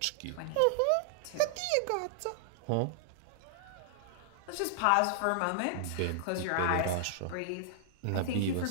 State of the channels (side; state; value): both; different; correlation -0.01